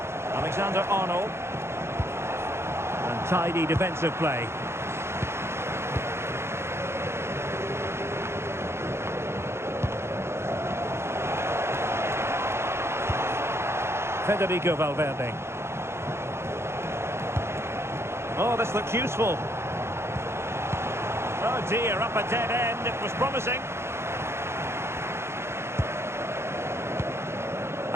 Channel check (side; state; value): left; late; 0.12 ms